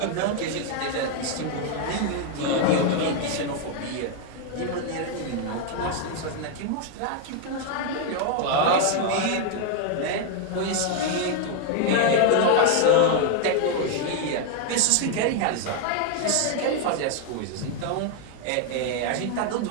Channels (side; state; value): both; different; correlation 0.00